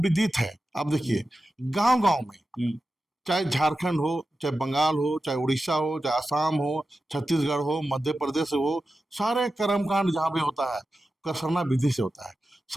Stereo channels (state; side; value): normal; both; correlation 0.92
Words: विदित है। आप देखिए गांव गांव में, चाहे झारखंड हो, चाहे बंगाल हो, चाहे उड़ीसा हो, चाहे आसाम हो, छत्तीसगढ़ हो, मध्य प्रदेश हो, सारे कर्मकांड जहाँ पे होता है उसका सरना विधि से होता है।